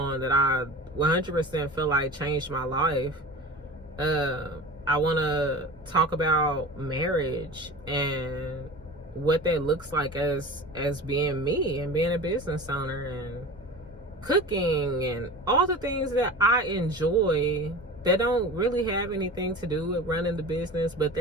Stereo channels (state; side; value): normal; both; correlation 0.34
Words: that I 100% feel like changed my life. I want to talk about marriage and what that looks like as being me and being a business owner, and cooking and all the things that I enjoy that don't really have anything to do with running the business, but